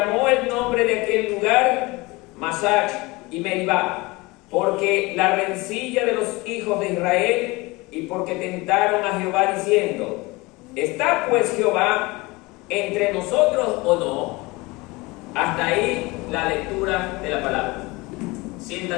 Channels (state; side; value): quieter; right; 23.4 dB